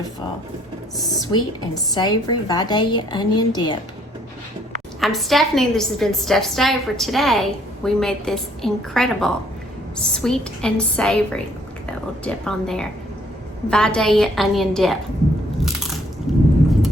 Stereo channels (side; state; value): both; normal; correlation 0.64